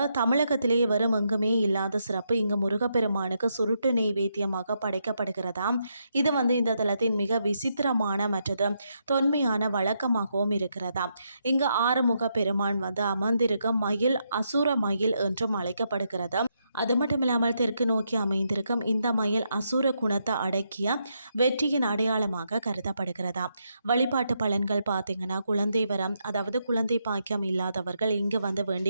தமிழகத்திலே வரும் எங்குமே இல்லாத சிறப்பு இங்கு முருகப்பெருமானுக்கு சுருட்டு நெய்வேத்தியமாக படைக்கப்படுகிறதாம். இது வந்து இந்த தலத்தின் மிக விசித்திரமான மற்றது தொன்மையான வழக்கமாகவும் இருக்கிறதாம். இங்கு ஆறுமுக பெருமான் வந்து அமர்ந்திருக்க மயில் அசுர மயில் என்றும் அழைக்கப்படுகிறது. அது மட்டும் இல்லாமல் தெற்கு நோக்கி அமைந்திருக்கும் இந்த மயில் அசுர குணத்தை அடக்கிய வெற்றியின் அடையாளமாக கருதப்படுகிறதா. வழிபாட்டு பலன்கள் பார்த்தீங்கன்னா, குழந்தை வரம், அதாவது குழந்தை பாக்கியம் இல்லாதவர்கள் இங்கு வந்து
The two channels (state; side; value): inverted; both; correlation -0.80